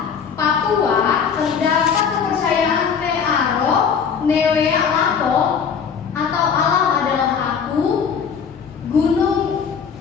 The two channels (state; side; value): quieter; right; 6.7 dB